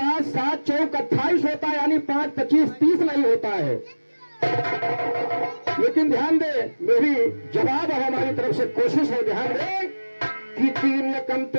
7 चौक 28 होता है, यानी 5 25 30 नहीं होता है। लेकिन ध्यान दे, मेरी जवाब है, हमारी तरफ से कोशिश है, ध्यान दे कि 3 कम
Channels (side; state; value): both; inverted; correlation -1.00